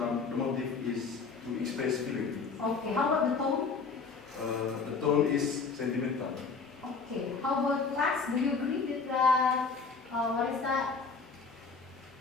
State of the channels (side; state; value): right; quieter; 4.8 dB